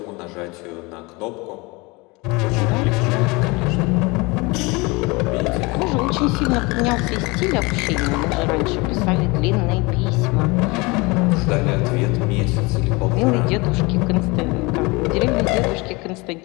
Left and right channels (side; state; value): right; quieter; 25.3 dB